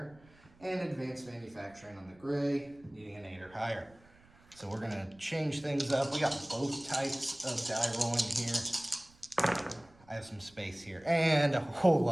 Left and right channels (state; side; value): noise; right; rumble, 27 dB below the sound